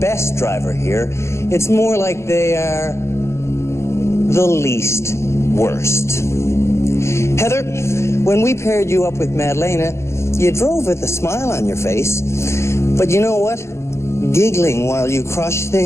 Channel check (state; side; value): late; right; 0.13 ms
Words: driver here. It's more like they are the least worst. Heather, when we paired you up with Madalena, you drove with a smile on your face. But you know what? Giggling while you crush